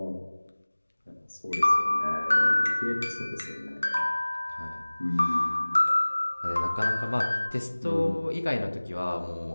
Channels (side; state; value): both; inverted; correlation -1.00